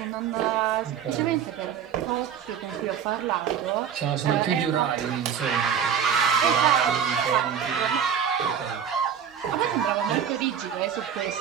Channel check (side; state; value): left; quieter; 8.1 dB